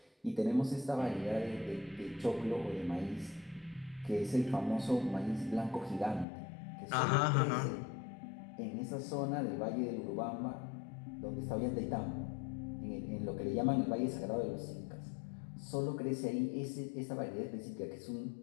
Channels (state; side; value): drops out; right; at 6.2 s